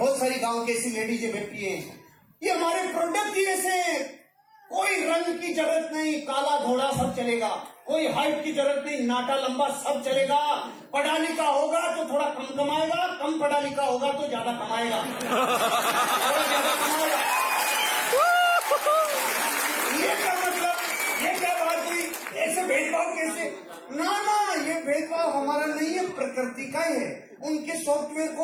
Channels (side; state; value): both; identical; correlation 1.00